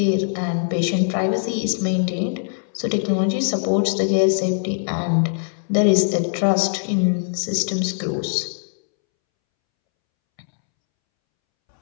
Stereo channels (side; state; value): right; silent; 65 dB below the other